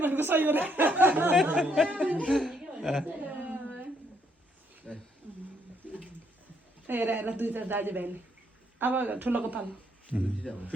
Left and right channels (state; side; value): normal; both; correlation 0.71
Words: सही हो रे हेर हेर दुई चार दाजुभाइले अब ठुलोको पालो